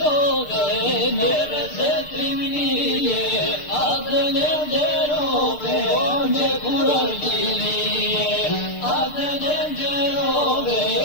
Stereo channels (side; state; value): right; late; 6.7 ms